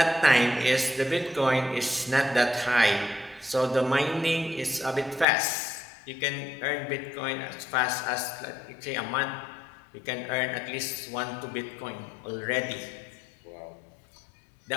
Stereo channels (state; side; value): drops out; right; at 5.2 s